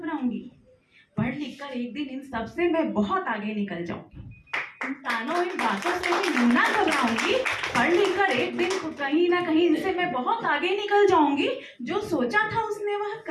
पढ़ लिख कर एक दिन इन सब से मैं बहुत आगे निकल जाऊंगी। इन तानों, इन बातों से मैं यूं ना घबराऊंगी। पढ़ लिख कर एक दिन कहीं ना कहीं इनसे मैं बहुत आगे निकल जाऊंगी। जो सोचा था उसने वह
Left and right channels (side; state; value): both; identical; correlation 1.00